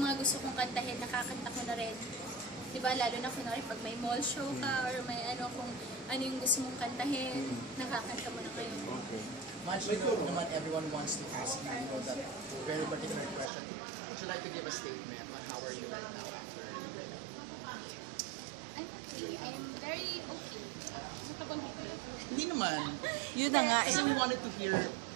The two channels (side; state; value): left; drops out; at 13.5 s